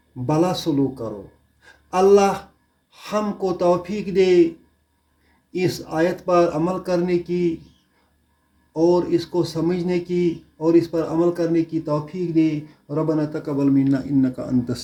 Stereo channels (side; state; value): both; identical; correlation 1.00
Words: بھلا سلوک کرو۔ اللہ ہم کو توفیق دے اس آیت پر عمل کرنے کی، اور اس کو سمجھنے کی، اور اس پر عمل کرنے کی توفیق دے۔ ربنا تقبل منا انک انت